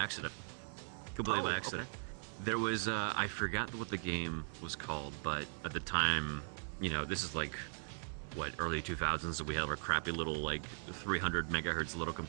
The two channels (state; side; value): silent; left; 52 dB below the other